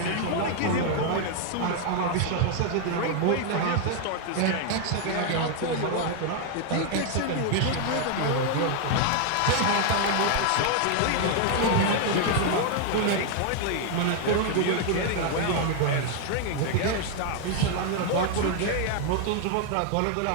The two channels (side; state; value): both; different; correlation 0.00